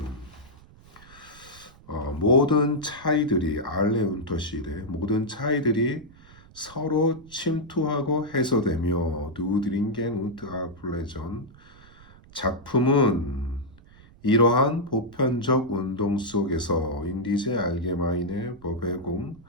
모든 차이들이 알레 운터시레, 모든 차이들이 서로 침투하고 해소되며 누드링겐 운트 아플레전, 작품은 이러한 보편적 운동 속에서 인디제 알게마인의 버베공,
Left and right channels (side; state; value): right; noise; rumble, 23 dB below the sound